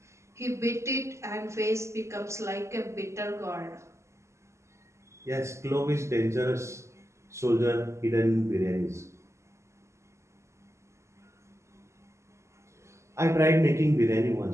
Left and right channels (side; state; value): left; late; 0.13 ms